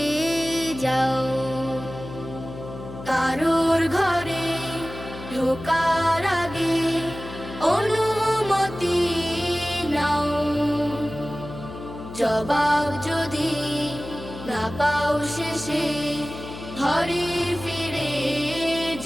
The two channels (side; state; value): left; noise; hum, 12 dB below the sound